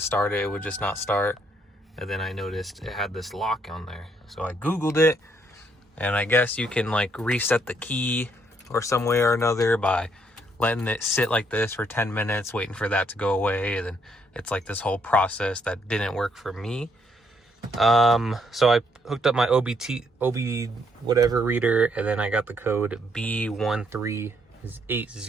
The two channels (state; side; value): normal; both; correlation 0.71